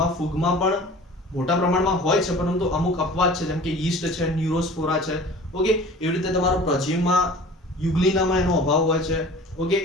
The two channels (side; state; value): both; normal; correlation 0.43